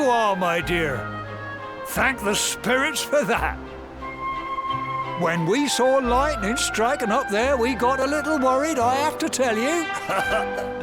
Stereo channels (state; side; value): identical; both; correlation 1.00